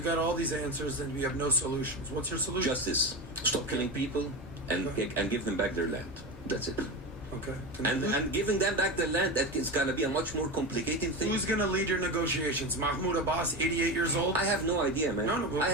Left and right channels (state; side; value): normal; both; correlation 0.21